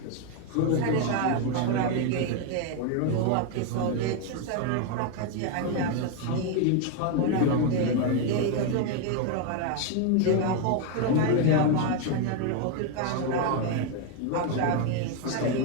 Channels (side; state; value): both; different; correlation 0.01